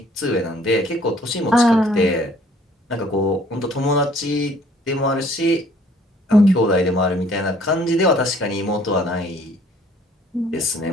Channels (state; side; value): normal; both; correlation 0.58